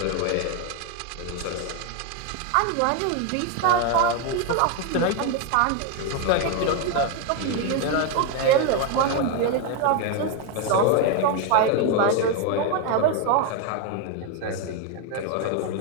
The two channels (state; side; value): different; both; correlation 0.01